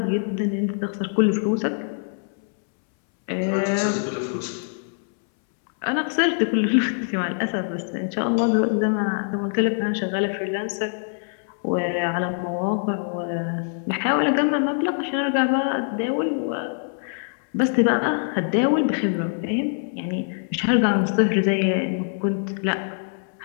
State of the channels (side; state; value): right; silent; 63 dB below the other